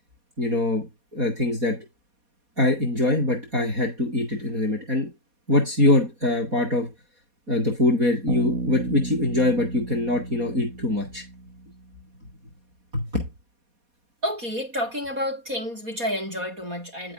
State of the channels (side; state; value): left; late; 4.2 ms